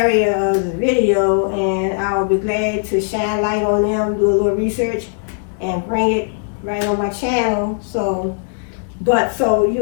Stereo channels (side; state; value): right; silent; digital silence